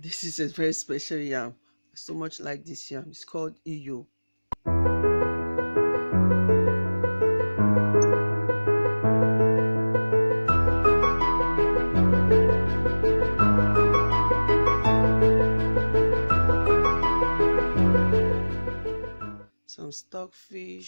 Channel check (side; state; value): both; inverted; correlation -1.00